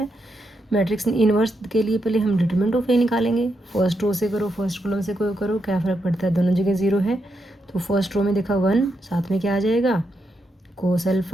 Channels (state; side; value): normal; both; correlation 0.83